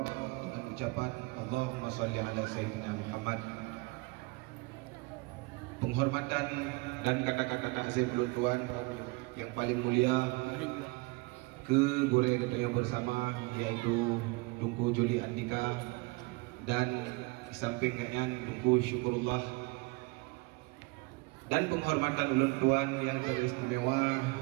dengan ucapan Allahumma shalli ala sayyidina Muhammad. Penghormatan dan kata-kata takzim tuan yang paling mulia ke boleh kita yang bersama yaitu Tunku Juli Andika dan di samping kalian Tunku Syukurullah, dan penghormatan ulun tuan yang teristimewa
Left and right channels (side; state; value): left; quieter; 26.2 dB